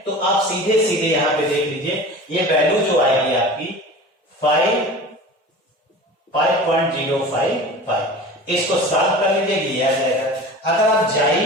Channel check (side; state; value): both; normal; correlation 0.37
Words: तो आप सीधे सीधे यहां पे देख लीजिए, ये वैल्यू जो आएगी आपकी 5.055, इसको सॉल्व कर लीजिए, ये आ जाएगा। अगर आप